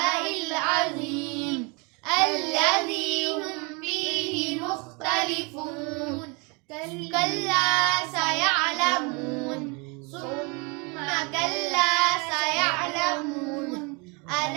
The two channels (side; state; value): left; quieter; 30.8 dB